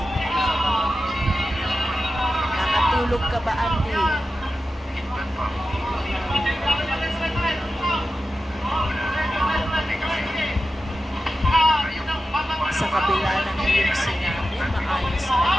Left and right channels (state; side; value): normal; both; correlation 0.92